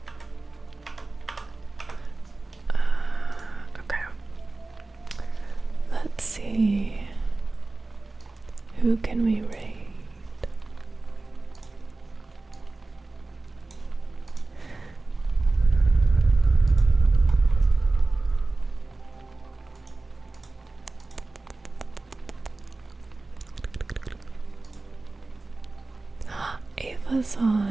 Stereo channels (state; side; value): quieter; left; 3.3 dB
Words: Okay. Let's see. Who can we raid? Ava's